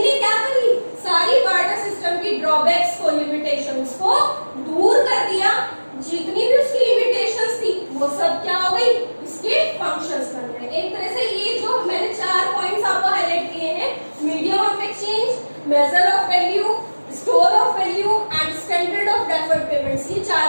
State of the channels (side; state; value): both; inverted; correlation -1.00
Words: ने क्या करी, सारी बार्टर सिस्टम की ड्रॉबैक्स को, लिमिटेशंस को दूर कर दिया। जितनी भी उसकी लिमिटेशंस थी वो सब क्या हो गई, इसके फंक्शंस बन गए। एक तरह से ये जो मैंने 4 पॉइंट्स आपको हाईलाइट किए हैं, medium of exchange, major of value, store of value and standard of deferred payments, ये